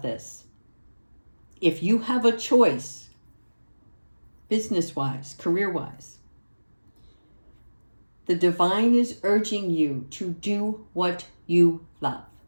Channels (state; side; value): inverted; both; correlation -1.00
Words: this. If you have a choice, business-wise, career-wise, the divine is urging you to do what you love.